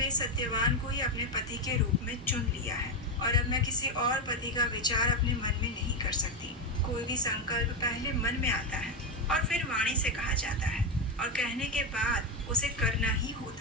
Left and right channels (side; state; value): both; normal; correlation 0.10